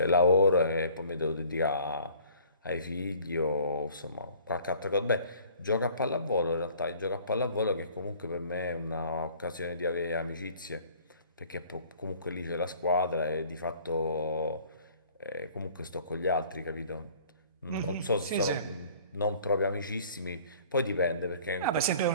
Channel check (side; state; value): both; inverted; correlation -0.52